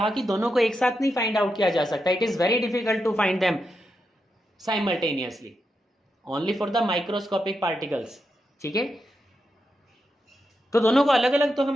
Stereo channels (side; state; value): both; normal; correlation 0.86